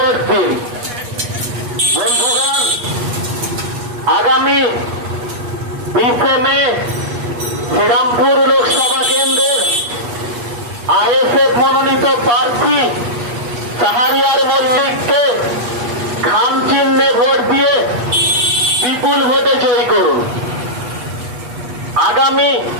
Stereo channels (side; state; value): left; late; 8.3 ms